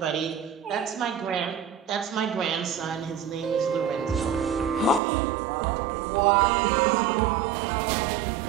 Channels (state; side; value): drops out; left; at 5.0 s